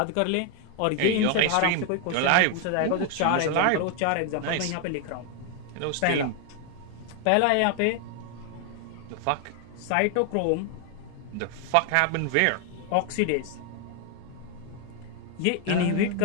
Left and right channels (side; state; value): both; different; correlation 0.01